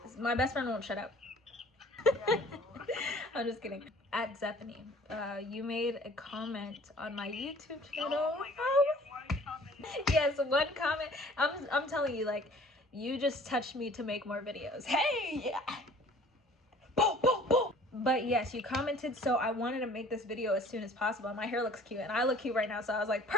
My best friend won't shut up. I'm just kidding. At Zephany, you made a comment on my YouTube channel. Oh my god, one comment. Yes, one comment. I'm telling you, like, you just touched me to make more videos. Hey, yeah. Boom, boom, boom. But yes, you commented, so I wanted to make this video as soon as possible. My hair looks cute, and I look cute right now, so I was like,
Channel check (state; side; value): normal; both; correlation 0.51